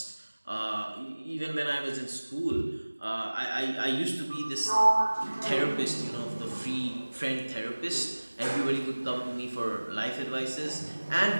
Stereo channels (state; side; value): inverted; both; correlation -1.00